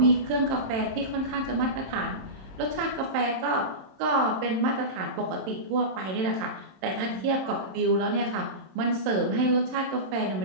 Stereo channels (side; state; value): left; late; 27 ms